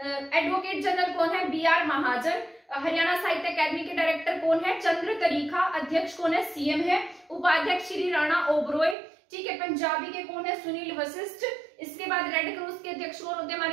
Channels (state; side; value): drops out; left; at 9.0 s